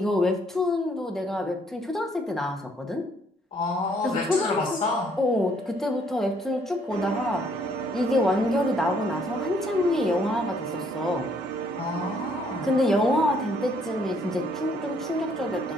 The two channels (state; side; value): normal; both; correlation 0.66